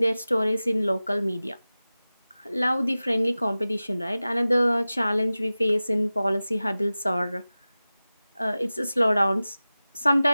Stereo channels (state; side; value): inverted; both; correlation -0.97